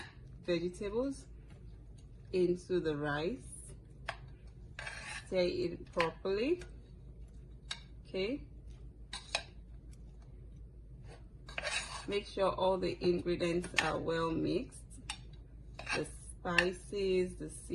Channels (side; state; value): both; identical; correlation 1.00